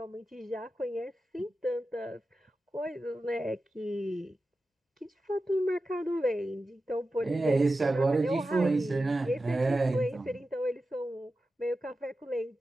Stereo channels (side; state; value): both; normal; correlation 0.92